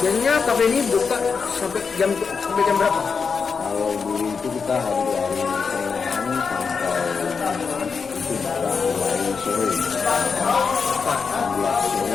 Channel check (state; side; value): quieter; right; 5.5 dB